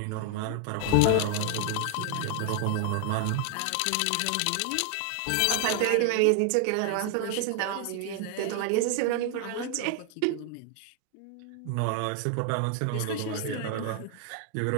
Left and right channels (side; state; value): both; different; correlation 0.00